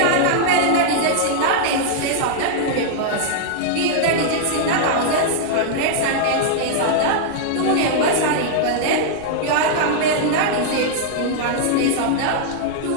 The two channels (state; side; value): different; both; correlation -0.01